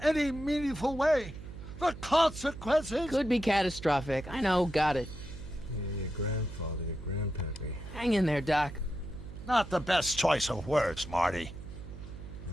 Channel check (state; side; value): noise; right; hum, 12 dB below the sound